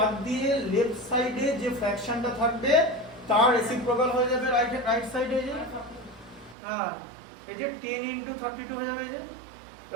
দিয়ে লেফট সাইডে যে ফ্র্যাকশনটা থাকবে তার রেসিপ্রোকাল হয়ে যাবে রাইট সাইডে, যে হ্যাঁ এই যে 10 into 32 হয়ে যাবে, এই যে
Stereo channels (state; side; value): drops out; left; at 6.6 s